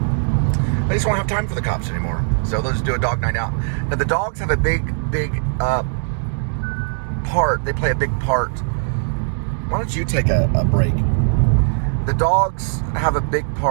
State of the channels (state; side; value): silent; left; digital silence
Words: They just won't have time for the cops anymore, so they'll just do a dog night out. Now the dogs have a big part. They play a big part. Why don't you take a break? The dogs have a big